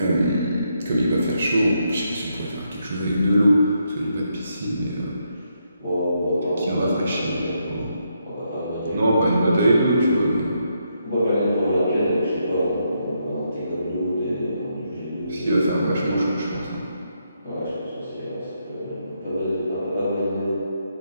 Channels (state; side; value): inverted; both; correlation -0.79